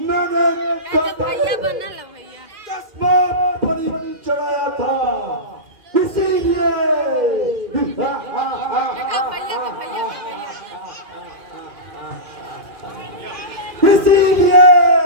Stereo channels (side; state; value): left; late; 2.4 ms